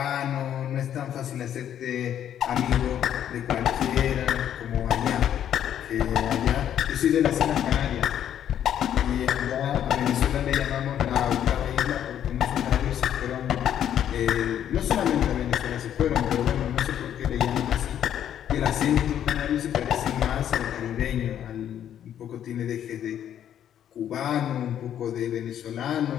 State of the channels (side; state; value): right; quieter; 10.2 dB